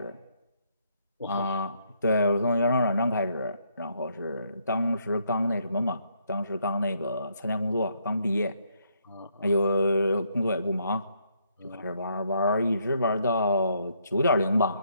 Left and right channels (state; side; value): inverted; both; correlation -0.73